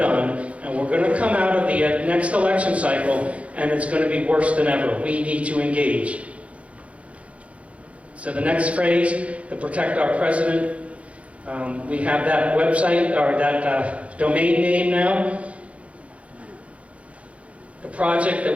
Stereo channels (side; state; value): left; late; 0.064 ms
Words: and we're going to come out of the next election cycle, and it's going to be worse than ever. We need to engage. So the next phrase, to protect our president, we have that website, or that domain name now. The project that